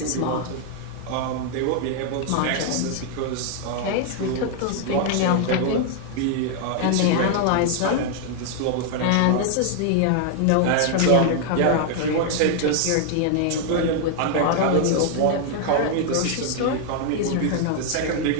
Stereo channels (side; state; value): both; different; correlation 0.00